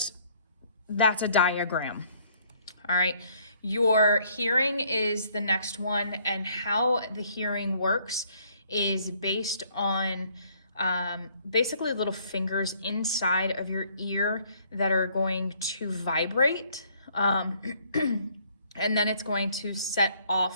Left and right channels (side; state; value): both; inverted; correlation -0.63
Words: that's a diagram. All right. Your hearing is the next one, and how the hearing works is based on basically little fingers inside of your ear that are going to vibrate, and then it's going to set